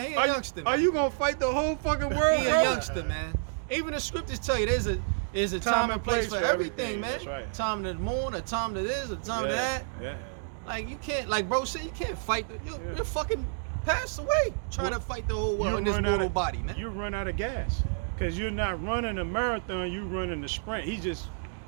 He a are, youngster, Are man. you gonna fight the whole fucking world, He a bro? youngster, man. Even the scriptures tell you there's a time and place for everything, man. That's right. Time to the moon, a time to this, a time to that. Yeah. Like you can't, like bro said, you can't fight. You're fucking passed away trying to fight the whole world in this run out mortal of- body, man. You run out of gas because you're not running a marathon. You running a sprint. He just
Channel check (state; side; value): silent; left; digital silence